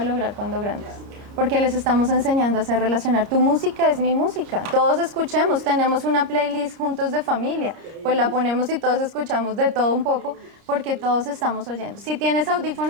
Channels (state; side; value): late; left; 30 ms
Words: lograr cuando grandes, porque les estamos enseñando a hacer relacionar. Tu música es mi música, todos escuchemos, tenemos una playlist juntos de familia, pues la ponemos y todos escuchamos de todo un poco, porque todos estamos oyendo. Si tienes